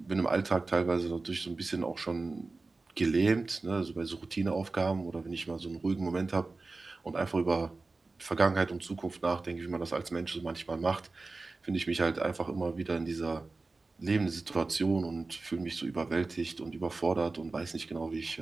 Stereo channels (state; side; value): quieter; left; 3.6 dB